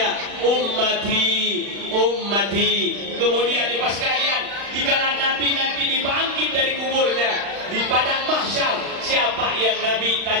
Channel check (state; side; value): late; left; 35 ms